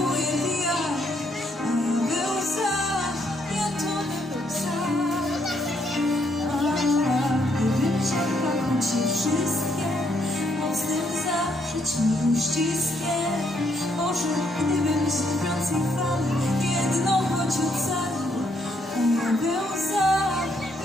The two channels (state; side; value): normal; both; correlation 0.73